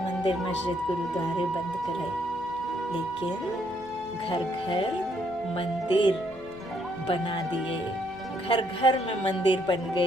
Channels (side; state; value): right; noise; hum, 28 dB below the sound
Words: मंदिर मस्जिद गुरुद्वारे बंद कराए, लेकिन घर घर मंदिर बना दिए, घर घर में मंदिर बन